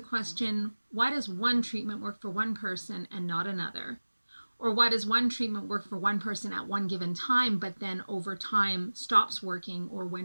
why does one treatment work for one person and not another? Or why does one treatment work for one person at one given time, but then over time stops working, or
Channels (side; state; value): both; inverted; correlation -1.00